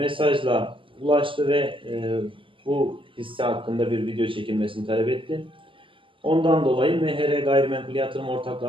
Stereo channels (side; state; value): left; late; 0.25 ms